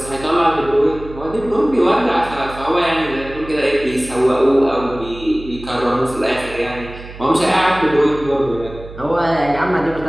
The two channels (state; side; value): noise; right; hum, 15 dB below the sound